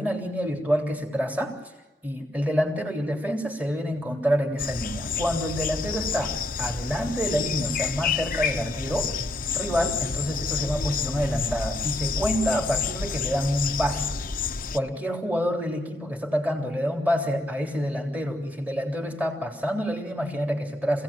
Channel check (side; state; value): both; normal; correlation 0.77